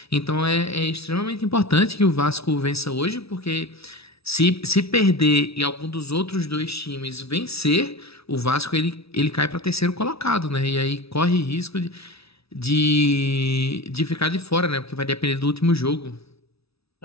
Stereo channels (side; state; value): right; late; 0.77 ms